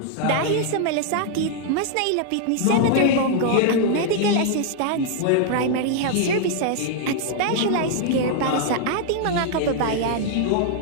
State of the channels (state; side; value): different; both; correlation 0.00